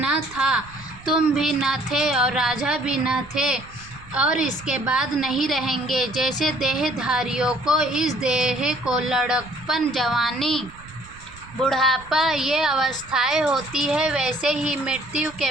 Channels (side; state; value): right; noise; rumble, 21 dB below the sound